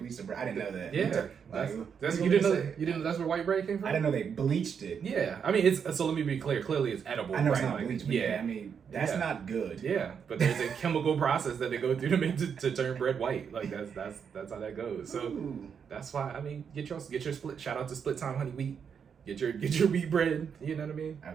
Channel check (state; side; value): quieter; left; 7.0 dB